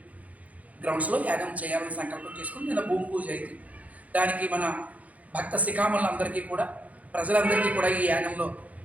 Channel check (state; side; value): late; left; 0.071 ms